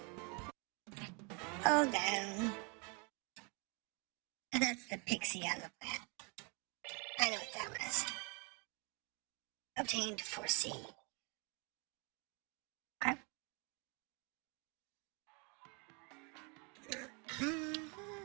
Oh, down. And that's the pixie on the plant. I know what that was. Obtained for C. Okay.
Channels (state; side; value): quieter; left; 33.2 dB